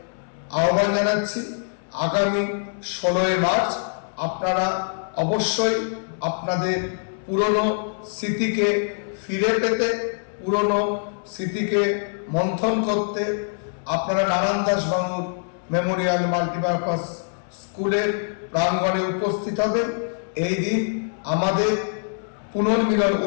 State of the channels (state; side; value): silent; right; digital silence